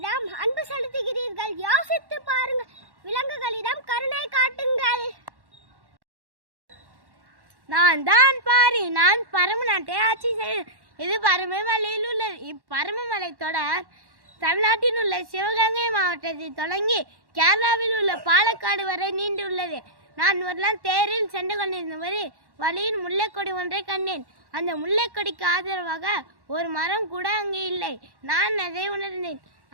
அன்பு செலுத்துகிறீர்கள்? யோசித்து பாருங்கள். விலங்குகளிடம் கருணை காட்டுங்கள். நான் தான் பாரி. நான் பரமநாட்டை ஆட்சி செய்கிறேன். இது பரமமலையில் உள்ளது. இப்பரமமலை தொடர் தமிழ்நாட்டில் உள்ள சிவகங்கை மாவட்டத்தில் தொடங்கி கேரளாவில் உள்ள பாலக்காடு வரை நீண்டுள்ளது. நான் ஒரு நாள் தேரில் சென்று கொண்டிருந்தபோது வழியில் முல்லைக்கொடி ஒன்றை கண்டேன். அந்த முல்லைக்கொடிக்கு ஆதரவாக ஒரு மரம் கூட அங்கே இல்லை. நான் அதை உணர்ந்தேன்.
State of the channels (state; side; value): late; left; 1.1 ms